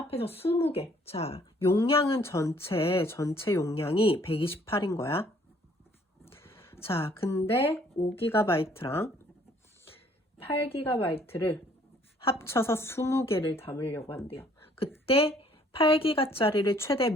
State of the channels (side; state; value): both; normal; correlation 0.61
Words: 20개. 자, 용량은 전체 용량이 128인 거야. 자, 근데 5GB랑 8GB를 합쳐서 20개를 담으려고 한대요. 그때 8GB짜리를 최대